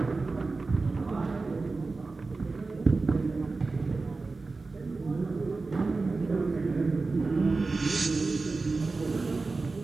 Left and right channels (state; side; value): quieter; left; 3.8 dB